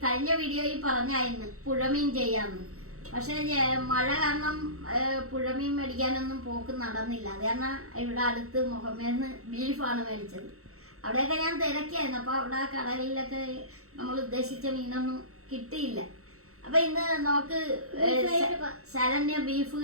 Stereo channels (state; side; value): late; left; 0.64 ms